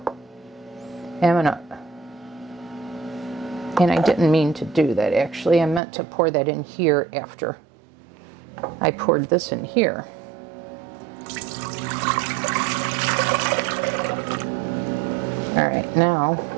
And I didn't mean to do that actually. I meant to pour that in here after I poured this in here. All right, now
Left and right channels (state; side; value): drops out; left; at 5.8 s